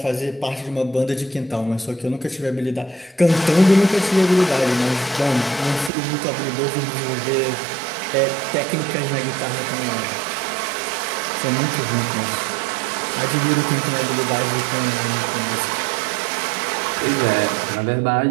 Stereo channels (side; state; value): left; drops out; at 5.9 s